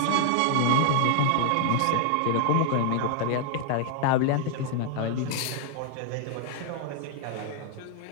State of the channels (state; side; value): different; both; correlation 0.00